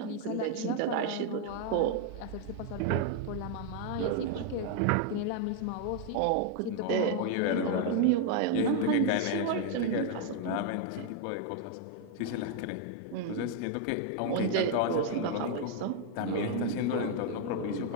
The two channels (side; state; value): both; different; correlation 0.00